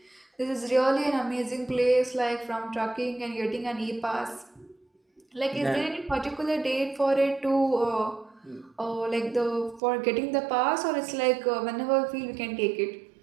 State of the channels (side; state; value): left; drops out; at 9.8 s